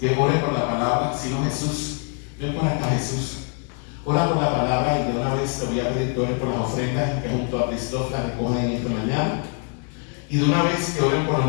ore por la palabra. Si no, Jesús, ven por acá, Jesús. Ora por la palabra y de una vez te voy a pedir que ores por las ofrendas que junto a Cristóf las recogen esta mañana. Y de una vez que oren por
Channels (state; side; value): quieter; right; 37.6 dB